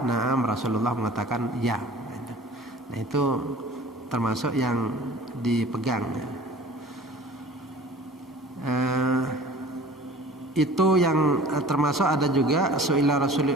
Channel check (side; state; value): both; normal; correlation 0.45